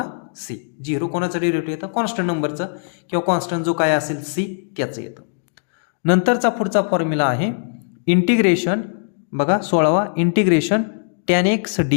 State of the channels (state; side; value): silent; right; digital silence